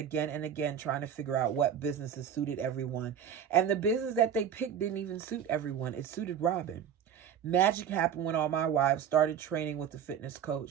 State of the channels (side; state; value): left; quieter; 8.4 dB